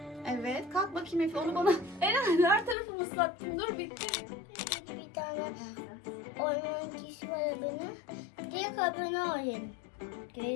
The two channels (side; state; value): right; drops out; at 2.8 s